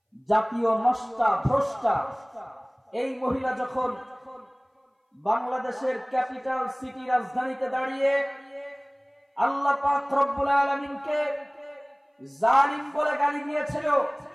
জাতীয় নষ্টা ভ্রষ্টা, এই মহিলা যখন বাংলাদেশের ক্যাপিটাল সিটি রাজধানীতে দাঁড়িয়ে আল্লাহ পাক রব্বুল আলামিনকে জালিম বলে গালি দিয়েছিল,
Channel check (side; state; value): both; identical; correlation 1.00